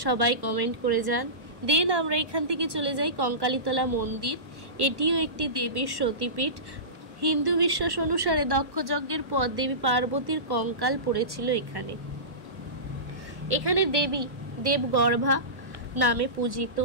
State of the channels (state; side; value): late; left; 1.1 ms